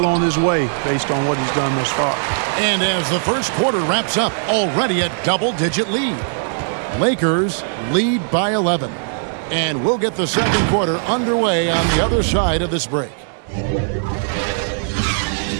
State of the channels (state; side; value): silent; left; digital silence